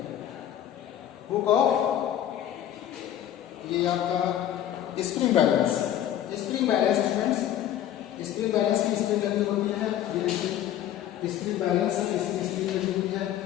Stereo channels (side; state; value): right; quieter; 11.4 dB